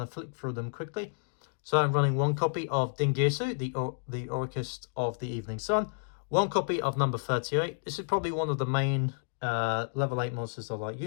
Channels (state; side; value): silent; right; digital silence